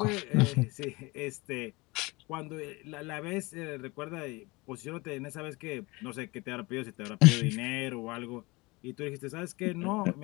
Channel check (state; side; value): quieter; right; 24.1 dB